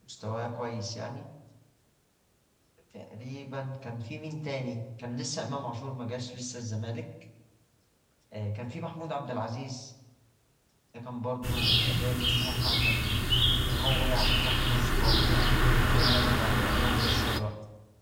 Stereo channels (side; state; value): both; identical; correlation 1.00